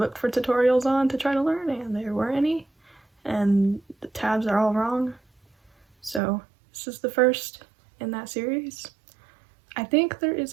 for tutorials on to try to learn, and there weren't any, and the tabs are all wrong. So this is the first in that series. I think there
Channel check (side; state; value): left; drops out; at 6.2 s